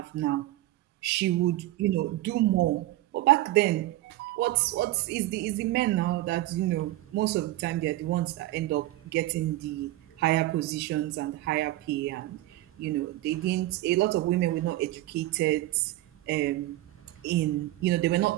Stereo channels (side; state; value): left; quieter; 16.3 dB